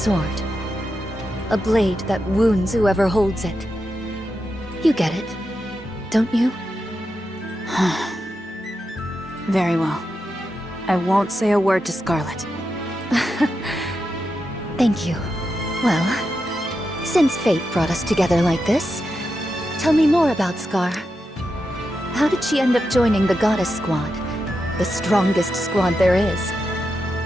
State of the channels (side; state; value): both; normal; correlation 0.87